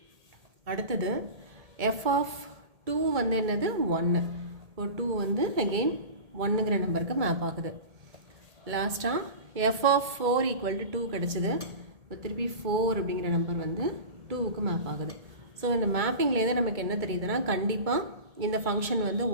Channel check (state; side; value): late; left; 2.2 ms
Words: அடுத்தது f of 2 வந்து என்னது 1. இப்போ 2 வந்து அகெயின் 1ங்கிற நம்பருக்கு மேப் ஆகுது. லாஸ்ட்டாக f of 4 equal to 2 கிடச்சிது. இப்போ திருப்பி 4 அப்படிங்கிற நம்பர் வந்து 2க்கு மேப் ஆகுது. ஸோ இந்த மேப்பிங்லேருந்து நமக்கு என்ன தெரியுதுன்னா கண்டிப்பாக இந்த ஃபங்க்ஷன் வந்து